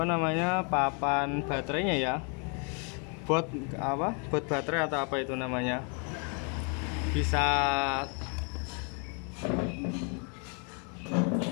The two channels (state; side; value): quieter; right; 38.2 dB